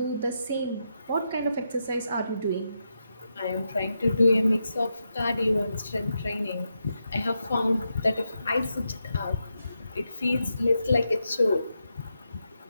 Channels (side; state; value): both; inverted; correlation -0.85